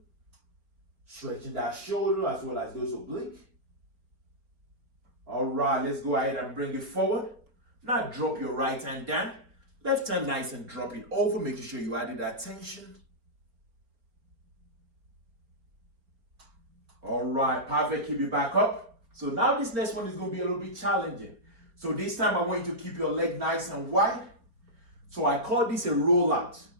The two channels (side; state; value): left; late; 4.4 ms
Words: Stretching that shoulder as well as those obliques. All right, let's go ahead and bring it forward. Now drop your right hand down. Left hand nice and drop it over, making sure you added that tension. All right, perfect. Keep it back up. So now this next one is going to be a little bit challenging. So this time I want you to keep your leg nice and wide. So I call this a rollout.